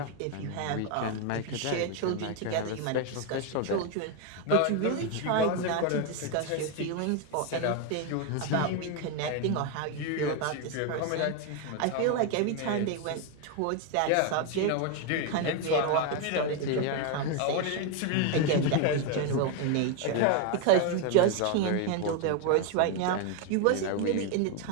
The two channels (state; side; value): different; both; correlation 0.01